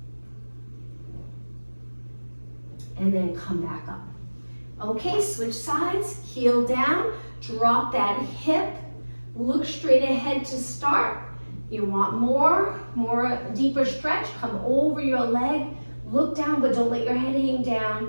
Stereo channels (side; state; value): both; inverted; correlation -1.00